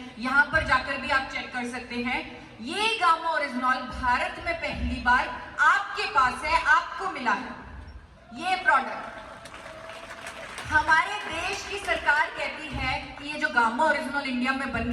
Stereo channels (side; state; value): both; identical; correlation 1.00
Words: यहां पर जाकर भी आप चेक कर सकते हैं। ये गामा ओरिजिनॉल भारत में पहली बार आपके पास है, आपको मिला है ये प्रोडक्ट। हमारे देश की सरकार कहती है कि ये जो गामा ओरिजिनल इंडिया में बन